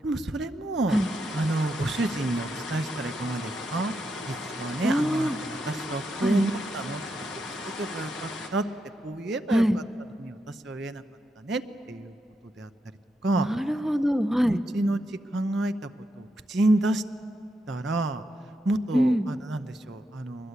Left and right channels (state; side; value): normal; both; correlation 0.83